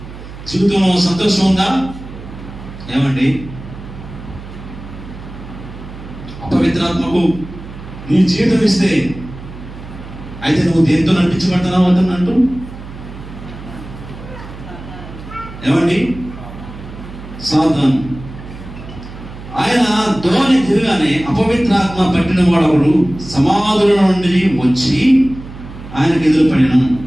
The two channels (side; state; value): right; noise; hum, 14 dB below the sound